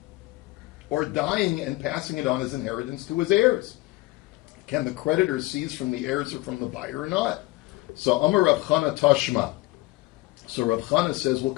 or dying and passing it on as inheritance to his heirs? Can the creditor seize from the heirs or from the buyer or not? So Amar Rav Chana Tashma. So Rav Chana says, well,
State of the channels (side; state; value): right; quieter; 20.3 dB